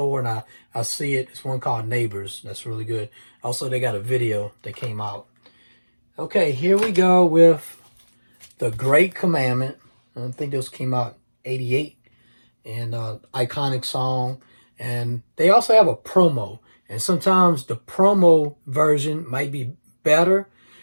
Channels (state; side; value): inverted; both; correlation -1.00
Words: and I see it, it's one called Neighbors. That's really good. Also, they got a video that came out. Okay, here we go with The Great Commandment. I think this came out 88. And iconic song. And they also have a promo. And sometimes the promo version might be better.